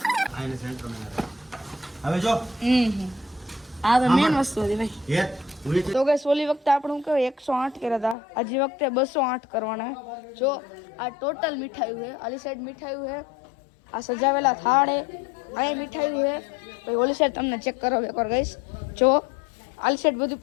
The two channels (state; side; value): drops out; right; at 8.2 s